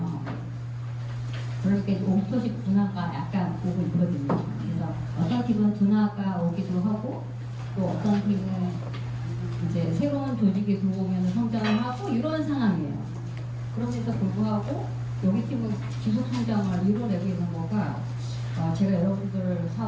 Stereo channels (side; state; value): both; identical; correlation 1.00